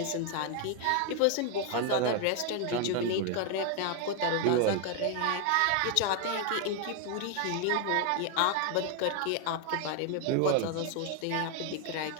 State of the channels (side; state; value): both; different; correlation 0.00